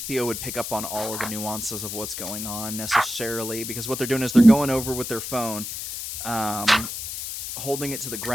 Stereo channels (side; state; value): left; noise; hiss, 6 dB below the sound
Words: Theo would pick up on all of the nuances of what's going on necessarily, because what they're doing is they're going over with their phone, holding it to the